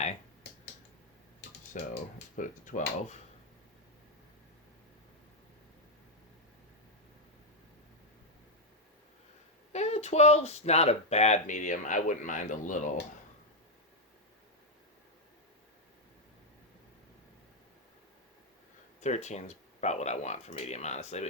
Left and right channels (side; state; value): both; normal; correlation -0.01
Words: So let's put it to 12. 12's not a bad medium. I wouldn't mind a little. 13's about what I want for medium, honestly, but